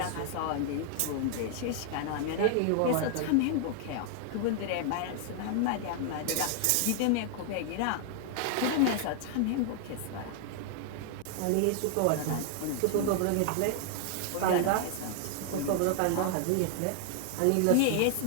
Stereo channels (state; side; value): different; both; correlation 0.00